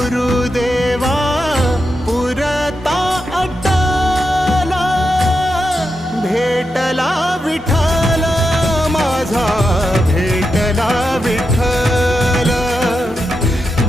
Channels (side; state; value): both; normal; correlation 0.87